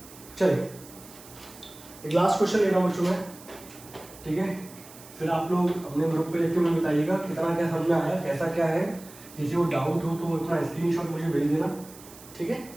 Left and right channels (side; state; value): right; noise; hiss, 19 dB below the sound